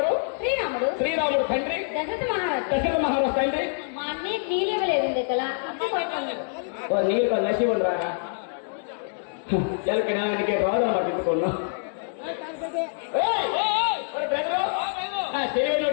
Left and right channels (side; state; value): right; silent; digital silence